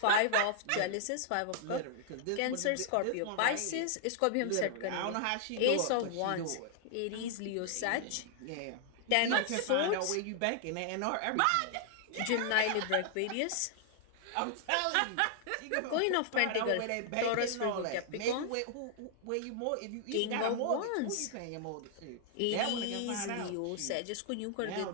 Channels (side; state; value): both; different; correlation 0.00